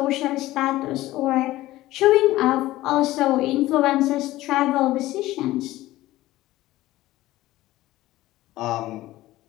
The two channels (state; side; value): quieter; right; 16.5 dB